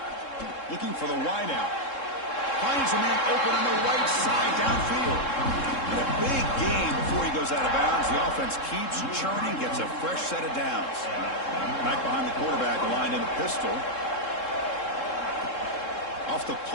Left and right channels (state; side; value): late; right; 3.7 ms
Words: Looking for the wide out. Finds a man open on the right side downfield. And a big gain before he goes out of bounds. The offense keeps churning, gets a fresh set of downs. Back behind the quarterback, aligned in the pistol. Off the